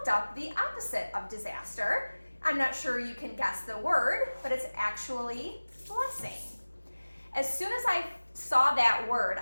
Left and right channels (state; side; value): inverted; both; correlation -1.00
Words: up the opposite of disaster. I'm not sure you can guess the word, but it's actually blessing. As soon as I saw that word,